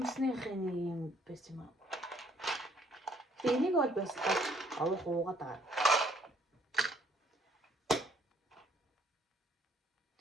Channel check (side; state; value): both; normal; correlation 0.63